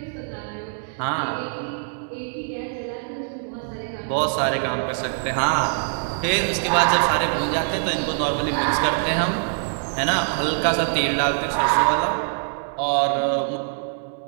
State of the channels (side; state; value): left; silent; 63 dB below the other